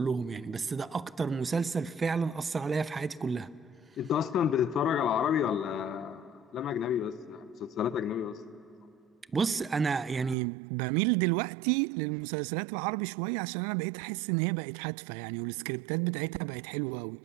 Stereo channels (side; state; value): left; drops out; at 10.4 s